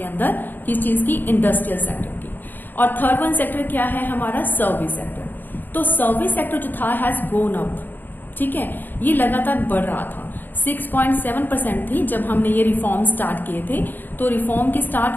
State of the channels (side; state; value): right; late; 0.090 ms